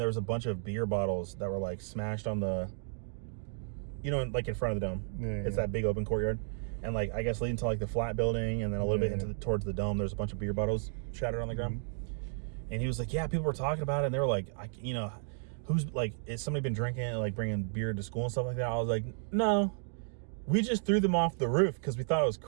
was a bunch of beer bottles that were like smashed on the, like in front of the dome. Yeah, it's that big open courtyard. And like, I guess leading to like the flat building and then a little bit towards the dome, there's a bunch of beer bottles shattered on the ground. And he was like, yeah, people were talking about it. And they were like, who's like, is somebody been drinking and like bringing beer to school and stuff like that? I was like, no, we just threw them off the roof because we thought it was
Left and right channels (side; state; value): left; silent; digital silence